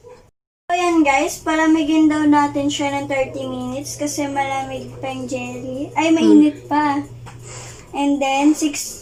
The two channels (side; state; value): both; identical; correlation 1.00